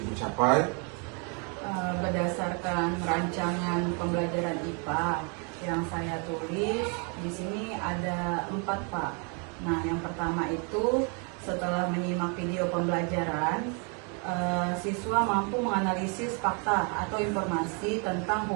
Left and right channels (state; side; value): quieter; left; 36.3 dB